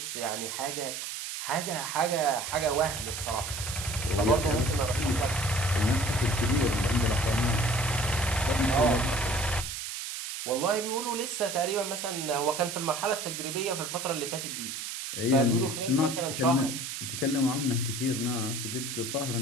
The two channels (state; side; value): noise; right; hiss, 6 dB below the sound